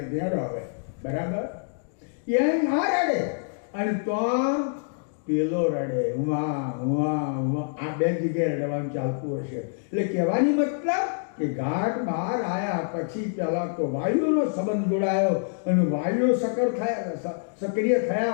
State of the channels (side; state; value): right; silent; digital silence